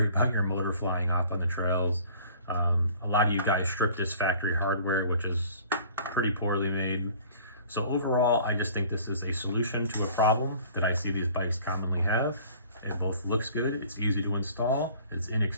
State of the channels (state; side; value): inverted; both; correlation -0.50